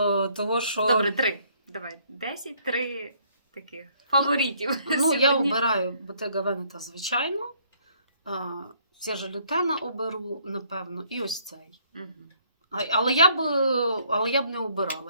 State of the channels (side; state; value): both; inverted; correlation -0.65